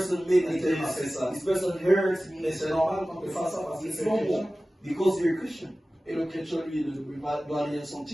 made me Until I say this, so. this person hurts me. Mais c'est normal qu'on te fasse ça parce que It's c'est un chrétien. normal because you're a Christian. Et le chrétien, lui, ne doit rien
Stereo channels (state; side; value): normal; both; correlation 0.96